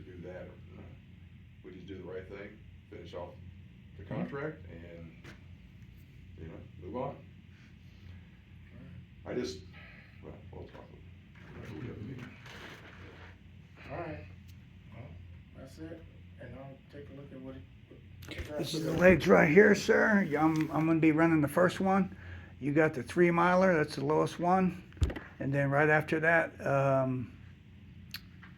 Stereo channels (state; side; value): identical; both; correlation 1.00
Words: do that, or, no. We just do the right thing, finish off the contract, and, you know, move on. I just, well, we'll talk. We have a meeting. All right. Well, that's it, and I'll take a look at what This is the legs right here, sir. I'm gonna be running the first one. You got the 3 miler, that's the lowest one. And then right after that,